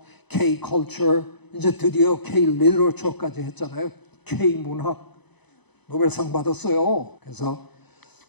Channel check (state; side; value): late; right; 0.99 ms